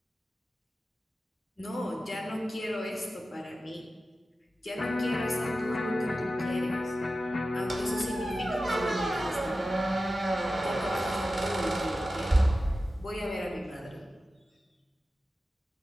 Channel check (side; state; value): both; normal; correlation 0.94